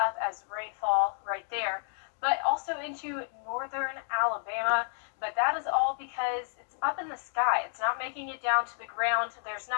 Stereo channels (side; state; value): right; silent; digital silence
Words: up as rainfall right there. But also into northern Alabama. But that is all because it's up in the sky. It's not making it down to the ground. There's